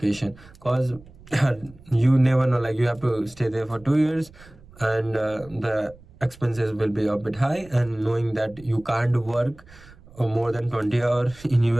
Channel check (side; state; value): right; noise; rumble, 23 dB below the sound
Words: because you never know, like you have to stay there for 2 years, and the expenses will be a bit high. And knowing that you can't work more than 20 hours in